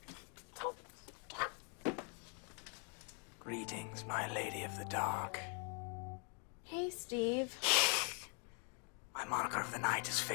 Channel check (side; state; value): right; quieter; 39.3 dB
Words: Greetings, my lady of the dark. Hey, Steve. My moniker of the night is